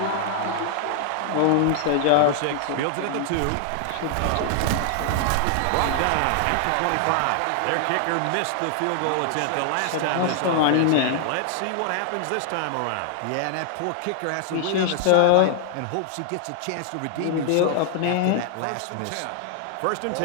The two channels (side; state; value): both; different; correlation 0.00